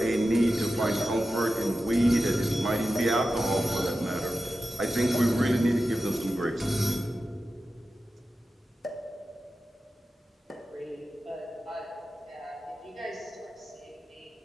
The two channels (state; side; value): normal; both; correlation 0.92